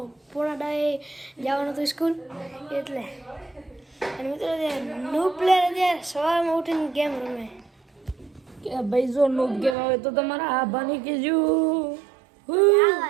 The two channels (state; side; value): drops out; left; at 9.8 s